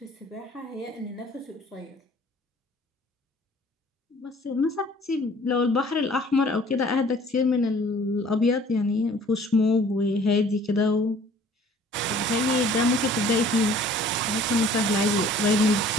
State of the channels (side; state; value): both; normal; correlation 0.52